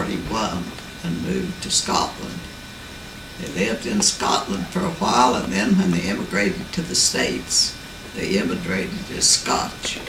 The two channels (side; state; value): both; identical; correlation 1.00